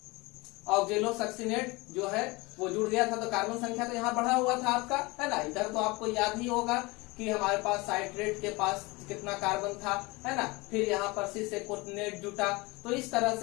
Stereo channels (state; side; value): quieter; right; 24.0 dB